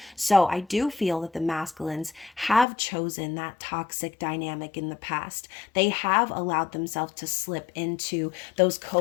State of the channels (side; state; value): right; drops out; at 2.7 s